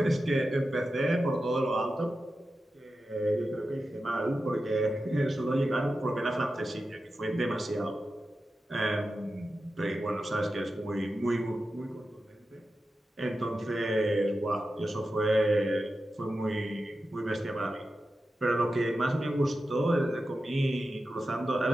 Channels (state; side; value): normal; both; correlation 0.91